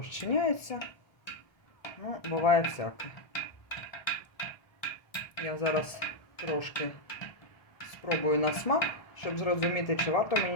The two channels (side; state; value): right; late; 1.3 ms